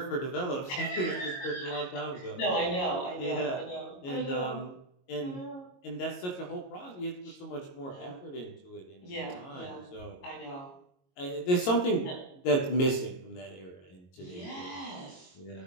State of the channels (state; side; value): late; right; 22 ms